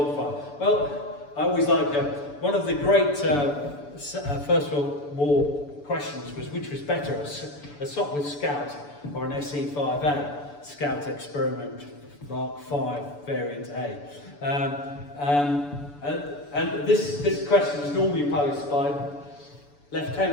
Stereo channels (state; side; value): late; right; 6.9 ms